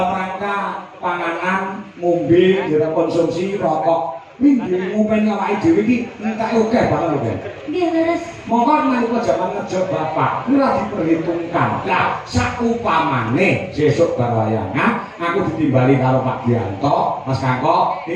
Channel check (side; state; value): both; identical; correlation 1.00